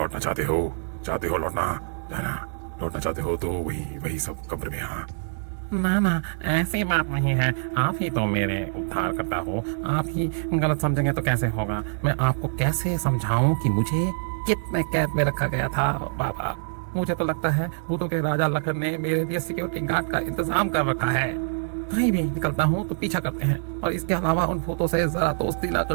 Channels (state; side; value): silent; left; digital silence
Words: चाहते हो? चाहते हो लौटना? जाना लौटना चाहते हो तो वही वही सब कब्र में। हाँ ना ना, ऐसी बात नहीं है। आप ही तो मेरे उद्धार करता हो। आप ही गलत समझेंगे तो कैसे होगा? मैं आपको कैसे समझाऊं कि मुझे कितने कैद में रखा गया था बाबा। मुझे तो लगता है वो तो के राजा लखन ने मेरे लिए सिक्योरिटी गार्ड का इंतजाम कर रखा है। कहीं भी निकलता हूँ तो पीछा करते हैं, और इसके अलावा उन भूतों से जरा दोस्ती ना